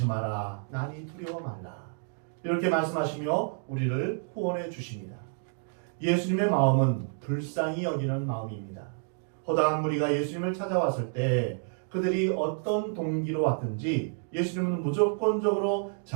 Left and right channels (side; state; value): left; silent; 58 dB below the other